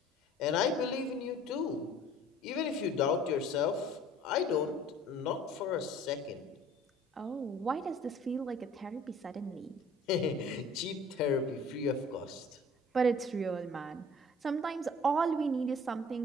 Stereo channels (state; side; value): normal; both; correlation 0.50